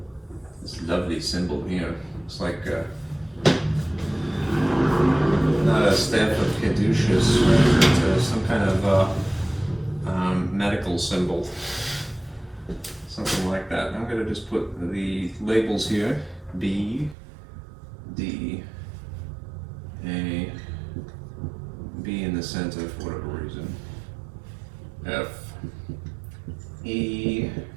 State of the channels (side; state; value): left; drops out; at 17.2 s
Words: This lovely symbol here looks like not a staff of caduceus, but some kind of medical symbol, something like that. I'm going to just put the labels here: B, D, A, B in the center for whatever reason, F, E,